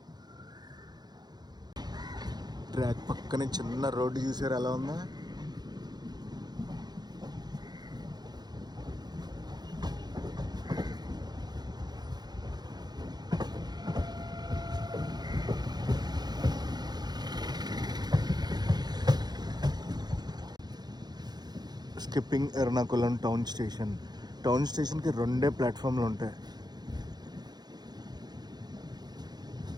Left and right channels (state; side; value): late; left; 0.20 ms